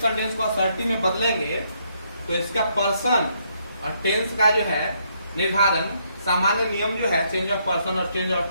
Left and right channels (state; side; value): inverted; both; correlation -0.73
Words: को असर्टिव में बदलेंगे तो इसका पर्सन और टेंस का जो है निर्धारण, सामान्य नियम जो है चेंज ऑफ पर्सन और चेंज ऑफ